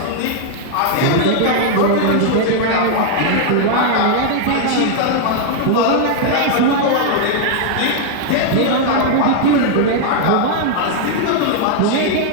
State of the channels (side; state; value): both; different; correlation 0.00